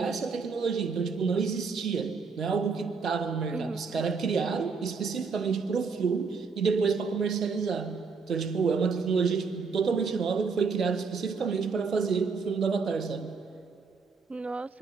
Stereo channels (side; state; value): left; quieter; 5.0 dB